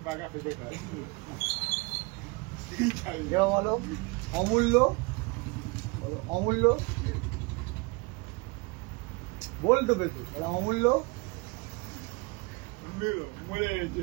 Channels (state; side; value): quieter; left; 27.5 dB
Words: বলো অমূল্য, বলো অমূল্য, বলতো পেতু অমূল্য,